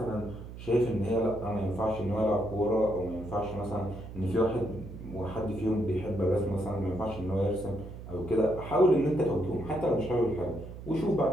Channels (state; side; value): noise; right; hum, 12 dB below the sound